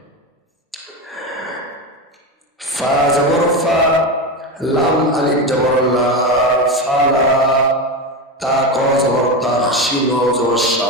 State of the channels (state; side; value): normal; both; correlation 0.18